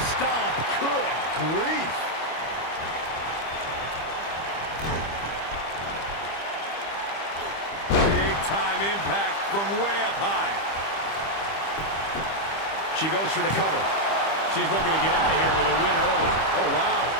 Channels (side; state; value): right; late; 25 ms